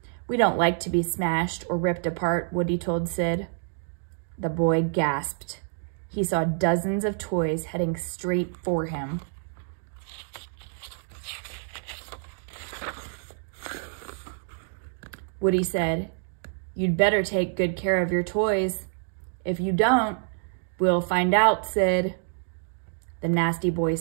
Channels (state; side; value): silent; left; digital silence